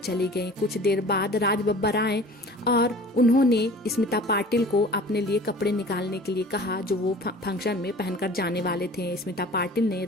गई। कुछ देर बाद राज बब्बर आए और उन्होंने स्मिता पाटिल को अपने लिए कपड़े निकालने के लिए कहा जो वो फंक्शन में पहनकर जाने वाले थे। स्मिता पाटिल ने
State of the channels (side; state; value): both; normal; correlation 0.44